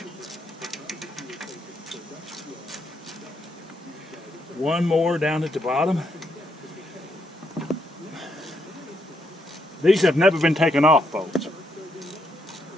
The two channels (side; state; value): both; normal; correlation 0.77